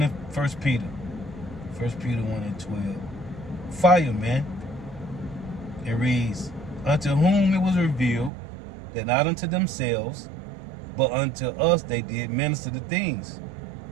in 1 Peter. 1 Peter 1 and 12. Fire, man. It reads, unto whom it was revealed that not unto themselves, but unto us they did minister the things.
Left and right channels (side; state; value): left; drops out; at 8.3 s